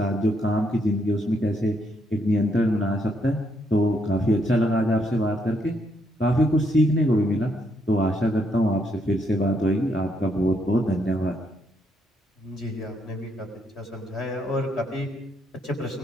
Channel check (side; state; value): both; normal; correlation 0.75